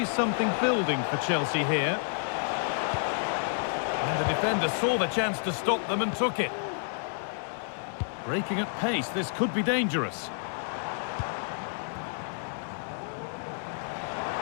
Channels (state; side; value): silent; right; digital silence